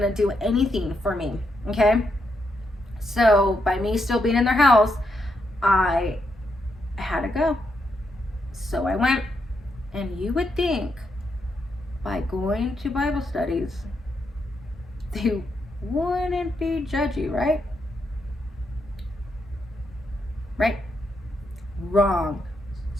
to do anything for me. Okay? So by me still being in their house, I had to go. So I went. And you would think by going to Bible studies, they wouldn't be judgy, right? Right? Wrong.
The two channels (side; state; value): both; normal; correlation 0.81